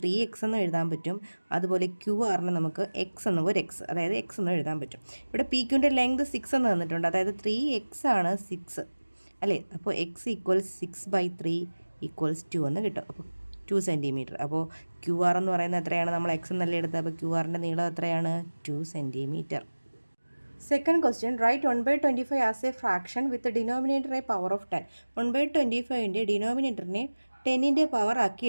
എന്ന് എഴുതാൻ പറ്റും. അതുപോലെ ക്യു ആറിന് നമുക്ക് എക്സ് എന്ന് ഒരു എക്സ്, അതായത് എക്സ് എന്ന് എഴുതാൻ പറ്റും. ഇവിടെ പി ക്യുവിൻ്റെ ലെങ്ത് 6 എന്ന് തന്നിട്ടുണ്ട്, അതായത് 3x ആണ് 6 അല്ലേ. അപ്പോൾ എക്സ് ഈക്വൽസ് 6/3 ഈക്വൽസ് 2 എന്ന് കിട്ടും. അപ്പോൾ 2 സെൻറ്റിമീറ്റർ. അപ്പോൾ ക്യു ആർ എന്ന് പറയുന്നത് എത്രയാണ്? നമ്മൾ എക്സ് എന്നല്ലേ എടുത്തത്. അപ്പോൾ ക്യു ആറിൻ്റെ നീളം എത്രയാണ്? 2 centimetre. Second question, write 1/25 as a fraction with denominator a power of 10. 1/25ൻ്റെ ഡിനോമിനേറ്ററിനെ 10ൻ്റെ പവർ ആക്കി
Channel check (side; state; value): both; inverted; correlation -1.00